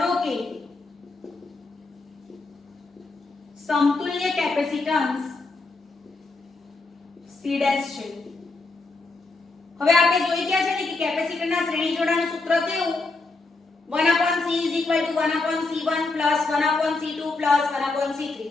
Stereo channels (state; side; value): quieter; right; 3.5 dB